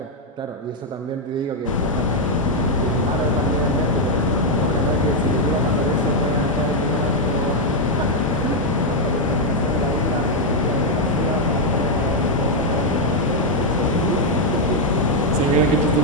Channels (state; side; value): normal; both; correlation 0.00